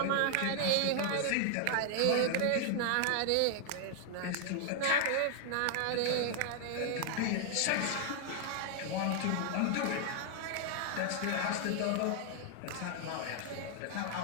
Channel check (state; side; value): different; both; correlation 0.00